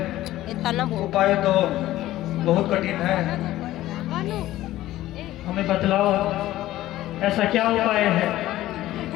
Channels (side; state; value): right; quieter; 15.1 dB